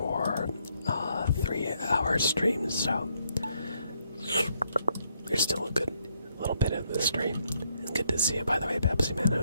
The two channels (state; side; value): inverted; both; correlation -0.74